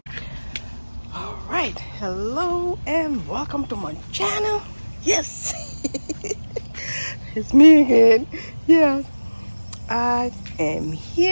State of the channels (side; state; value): both; inverted; correlation -1.00